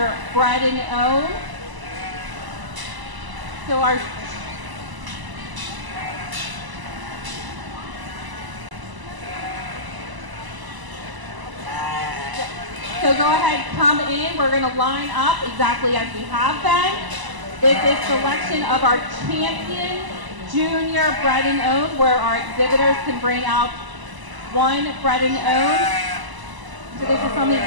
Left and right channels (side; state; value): left; late; 1.0 ms